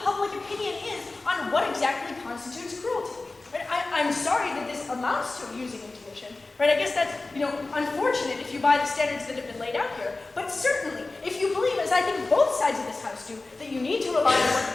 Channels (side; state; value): right; quieter; 3.4 dB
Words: public opinion is on what exactly constitutes cruelty. Right? I'm sorry that this amounts to using intuition. Right? I guess that's unfortunate if you buy the standards that have been laid out here. But certainly, if you believe, as I think both sides of this House do, that you need to rely on what